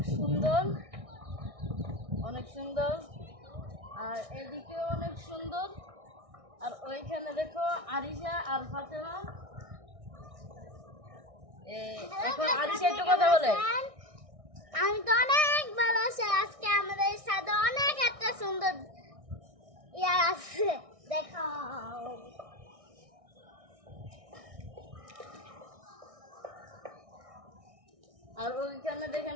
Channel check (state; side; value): late; left; 1.6 ms